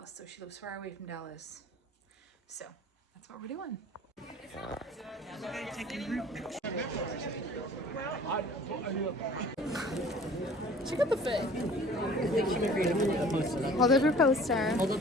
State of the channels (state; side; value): normal; both; correlation 0.48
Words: so she lives far away from Dallas. So that's what we're doing. Check out the fit. I think she might be able to post it. Hold up your poster. Hold